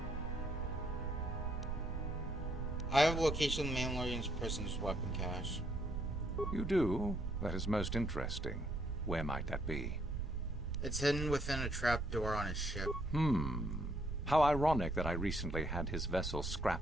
I have a location of the Mandalorian's prisoner's weapon cache. You do? That is most interesting. Where might that be? It's hidden within a trapdoor on his ship. How ironic that I recently had his vessel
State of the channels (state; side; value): noise; right; rumble, 4 dB below the sound